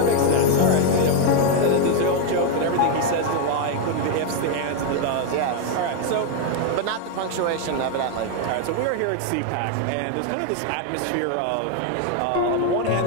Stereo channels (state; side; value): different; both; correlation 0.01